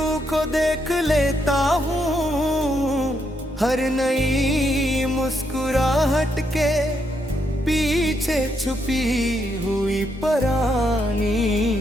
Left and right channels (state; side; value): normal; both; correlation 0.78